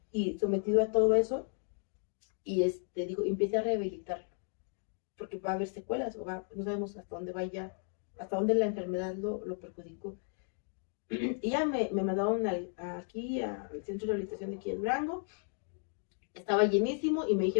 y sometido a todo eso. Y digo, empiece a rehabilitarlo, porque va a haber secuelas, no sabemos hasta dónde vaya, hasta dónde la enfermedad lo perjudicó. Y ya me mandaron aquí al centro de rehabilitación de aquí en Durango. Estaba llenísimo y me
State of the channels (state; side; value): silent; right; 55 dB below the other